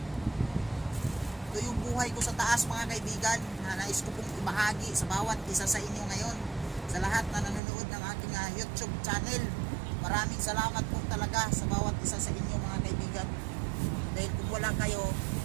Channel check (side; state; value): left; drops out; at 7.6 s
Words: Buhay ko sa taas mga kaibigan na nais ko pong ibahagi sa bawat isa sa inyo ngayon, sa lahat na nanonood ng aking YouTube channel. Maraming salamat po talaga sa bawat isa sa inyo mga kaibigan, dahil kung wala kayo,